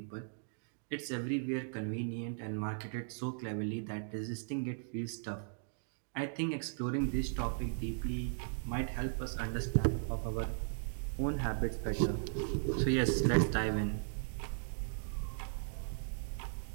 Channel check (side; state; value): left; silent; digital silence